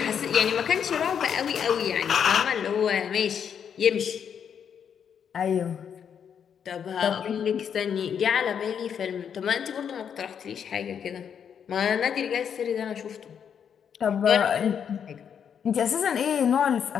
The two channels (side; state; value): right; quieter; 7.8 dB